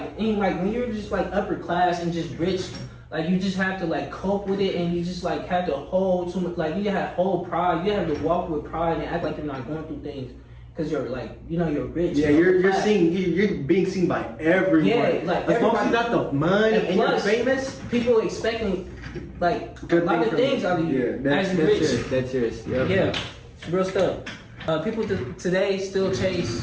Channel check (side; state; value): both; identical; correlation 1.00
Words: when you're just like upper class and just rich. Like you just have to like cope with it, and you just like have to hold you have whole pride. You have to walk with pride and act like you're not going through things because you're like, you know, you're rich. Yeah, you're being seen by everyone. Yeah, like as long as you got the money and plus, you're famous, people expecting like a lot of things out of you. That's serious. That's serious. Yeah, it's real stuff. People today still